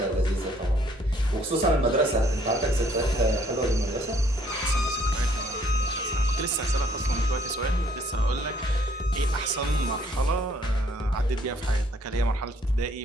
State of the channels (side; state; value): both; normal; correlation 0.63